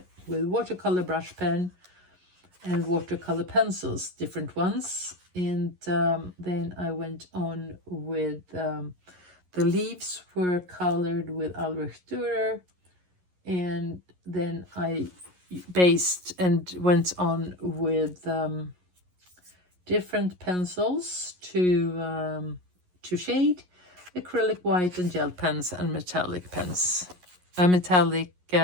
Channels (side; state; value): left; late; 11 ms